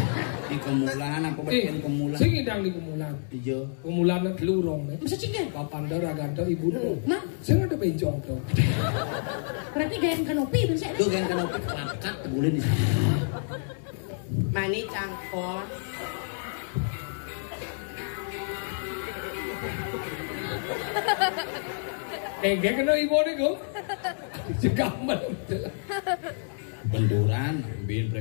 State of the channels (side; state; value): right; silent; digital silence